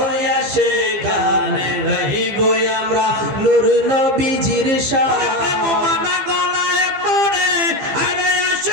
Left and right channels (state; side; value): late; left; 15 ms